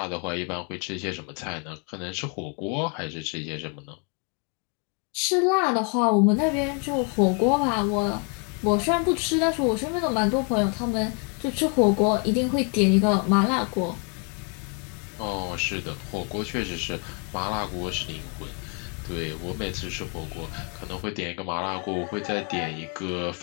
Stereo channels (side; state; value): right; quieter; 37.6 dB